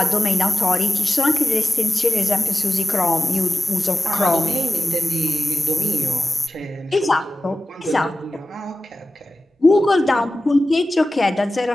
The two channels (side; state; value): both; normal; correlation 0.96